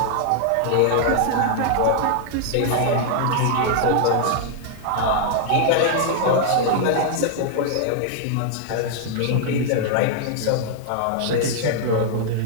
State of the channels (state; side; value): different; both; correlation 0.00